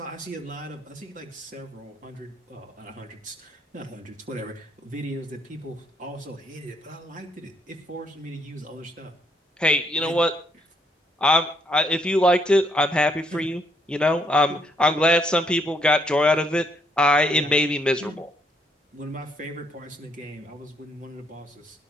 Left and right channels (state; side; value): normal; both; correlation 0.72